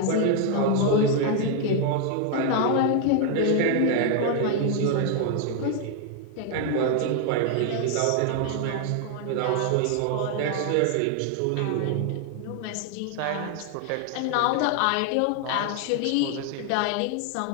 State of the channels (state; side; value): different; both; correlation 0.00